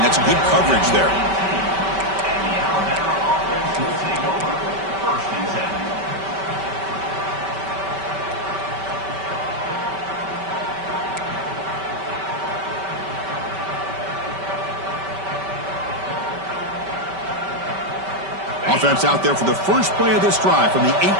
That's good coverage there. Offense out there for the first play of this drive from the 18.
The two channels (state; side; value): late; left; 5.2 ms